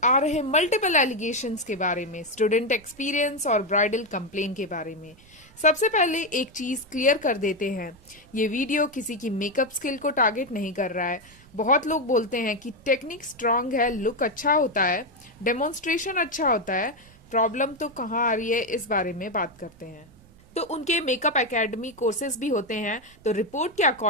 आ रहे मल्टीपल एलिगेशंस के बारे में, स्टूडेंट एक्सपीरियंस और ब्राइडल कंप्लेन के बारे में। सबसे पहले एक चीज क्लियर कर देते हैं, ये वीडियो किसी की मेकअप स्किल को टारगेट नहीं कर रहा है। बहुत लोग बोलते हैं कि टेक्निक स्ट्रांग है, लुक अच्छा होता है, डेमोन्स्ट्रेशन अच्छा होता है, प्रॉब्लम तो कहाँ आ रही है, इस बारे में बात करते हैं। तो उनके मेकअप एकेडमी कोर्सेज भी होते हैं। तो रिपोर्ट के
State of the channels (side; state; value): right; noise; rumble, 26 dB below the sound